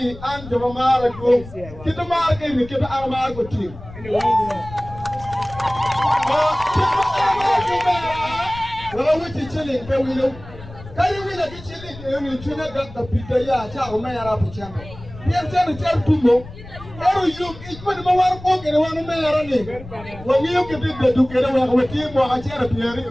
and the Mamara group. Get the market and get the Armago team. Well, which is chilling, can we know? Can you really be chilling? You tune got the Peter Yacha, Maya Pichano. We have turned to tell Tumo. Oh, you, it's one of our book and one of my running. When you get it together with him or a chair in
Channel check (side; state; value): left; noise; rumble, 16 dB below the sound